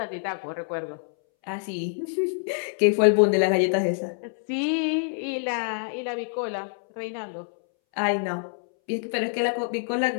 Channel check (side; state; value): right; silent; 61 dB below the other